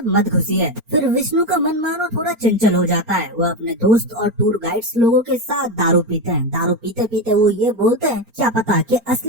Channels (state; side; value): late; left; 4.4 ms